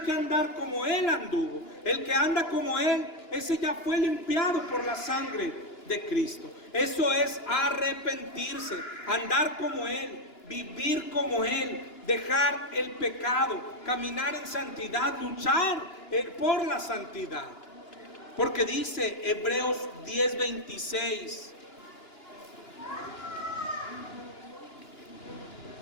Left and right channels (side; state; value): right; late; 2.9 ms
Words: que andar como Él anduvo. El que anda como Él, ese ya fue limpiado por la sangre de Cristo. Eso es arrepentirse, andar como Él, vivir como Él, dejar el pecado, caminar en santidad, luchar por la santidad. Porque dice Hebreos 10:26: